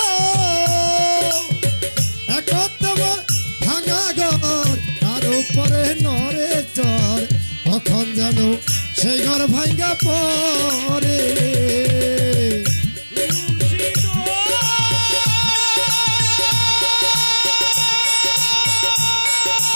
একদম ভাঙা ঘর তার উপরে নরে চর কখন যেন সেই ঘর ভাঙ্গা পরে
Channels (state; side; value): inverted; both; correlation -1.00